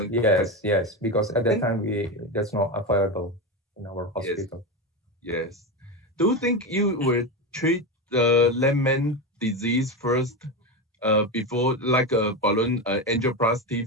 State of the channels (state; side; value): normal; both; correlation 0.16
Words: Because at that time that's not available in our hospital. Yes. Do you think you will treat the left main disease first before, like a balloon angioplasty